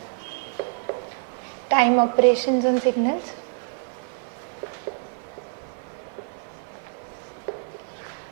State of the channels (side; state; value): left; silent; digital silence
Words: time operations on signals.